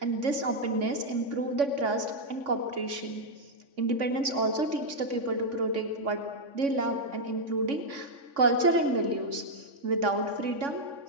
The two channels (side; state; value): left; late; 3.5 ms